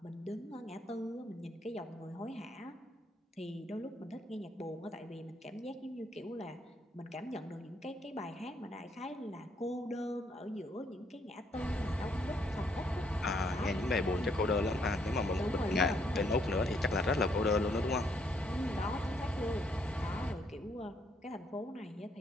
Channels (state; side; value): normal; both; correlation 0.71